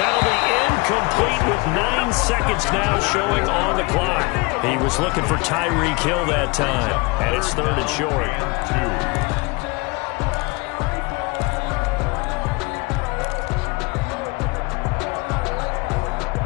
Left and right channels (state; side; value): quieter; right; 26.7 dB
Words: be incomplete with 9 seconds now showing on the clock. He was looking for Tyreek Hill that time, and it's 3rd and short. 2.